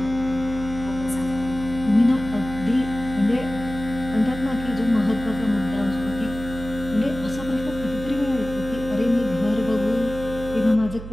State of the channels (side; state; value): right; noise; hum, 11 dB below the sound